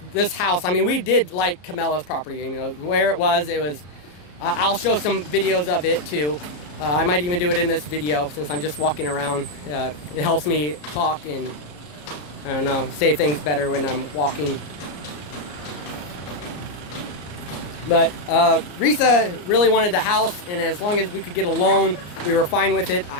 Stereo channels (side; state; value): right; late; 34 ms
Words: this house. I mean, we did like Camella's property, you know, where it was. I'll show some videos of it too. I might even do it in this video, since I'm just walking around. It helps me talk and, I don't know, say things better when I'm walking. But Risa really wanted the house, and as long as we could get a loan, we were fine with it.